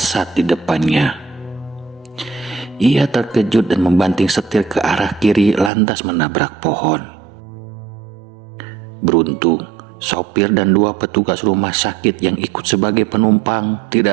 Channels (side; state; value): left; drops out; at 5.7 s